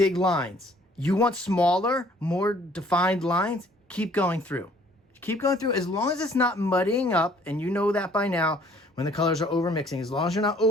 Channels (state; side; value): normal; both; correlation 0.59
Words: lines. You want smaller, more defined lines, keep going through. Keep going through as long as it's not muddying up, and you know that by now when the colors are over mixing, as long as you're not